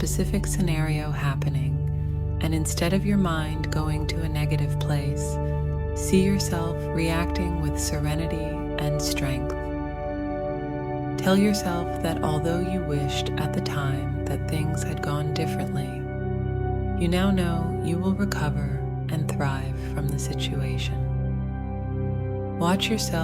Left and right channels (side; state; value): both; identical; correlation 1.00